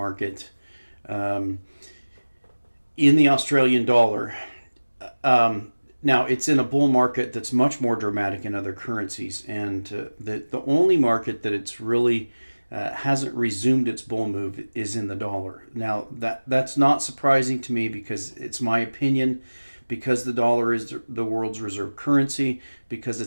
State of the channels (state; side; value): inverted; both; correlation -1.00